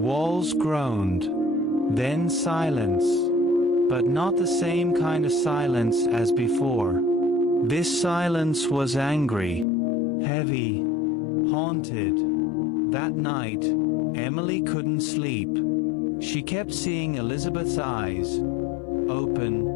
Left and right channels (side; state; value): right; drops out; at 9.7 s